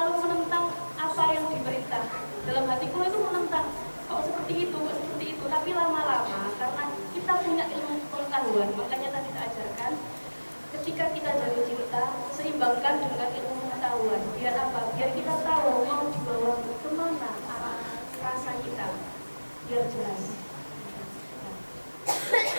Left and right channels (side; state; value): both; inverted; correlation -1.00